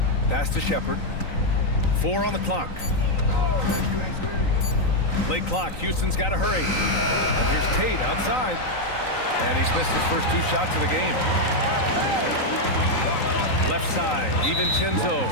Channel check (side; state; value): right; late; 3.9 ms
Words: Pass to Shepard. 4 on the clock. Late clock. Houston's got to hurry. And here's Tate outside. And he's missed his first 2 shots of the game. Left side, DiVincenzo.